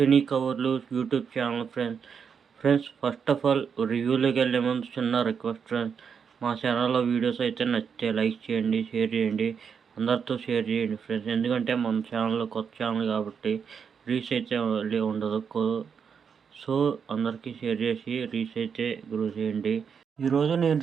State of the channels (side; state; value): left; quieter; 6.7 dB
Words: కవర్లు YouTube channel friends. First of all రివ్యూలోకి వెళ్ళే ముందు చిన్న రిక్వెస్ట్ ఫ్రెండ్స్. మా ఛానల్లో వీడియోస్ అయితే నచ్చితే లైక్ చేయండి, షేర్ చేయండి, అందరితో షేర్ చేయండి ఫ్రెండ్స్. ఎందుకంటే మన ఛానల్లో కొత్త ఛానల్ కాబట్టి రీచ్ అయితే ఉండదు. సో అందరికీ షేర్ చేసి రీచ్ అయితే గ్రో చేయండి. ఈరోజు నేను